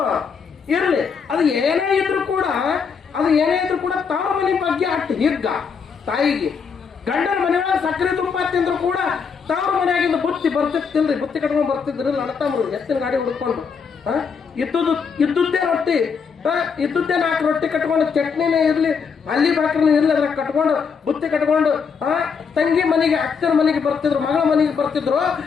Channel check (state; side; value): quieter; right; 6.0 dB